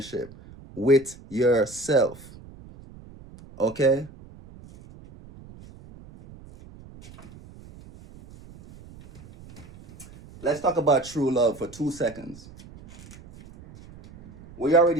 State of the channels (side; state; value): right; noise; rumble, 20 dB below the sound